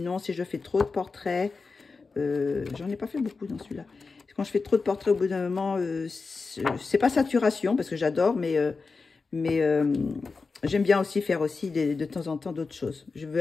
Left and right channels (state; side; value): quieter; right; 4.4 dB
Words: si je fais trop de portraits, j'en ai pas fait beaucoup dans celui-là. Quand je fais trop de portraits, au bout d'un moment, c'est pas saturation, parce que j'adore, mais j'aime bien aussi faire aussi de temps en temps d'autres choses. Je